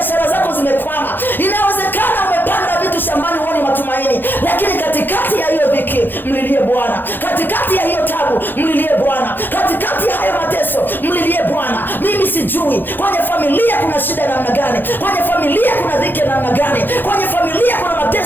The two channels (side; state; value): right; late; 0.094 ms